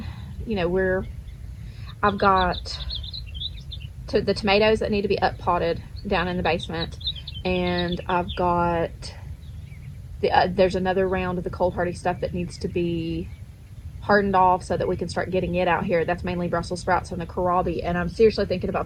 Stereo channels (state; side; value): identical; both; correlation 1.00